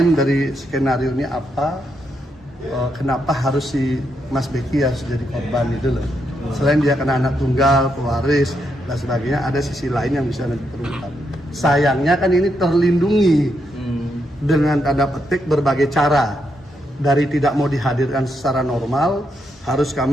dari skenario ini apa, kenapa harus si Mas Beki ya jadi korban itu loh. Selain dia kena anak tunggal, pewaris dan sebagainya, ada sisi lain yang bisa nanti terungkap. Sayangnya kan ini terlindungi dengan tanda petik berbagai cara. Dari tidak mau dihadirkan secara normal, harus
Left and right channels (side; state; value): both; normal; correlation 0.80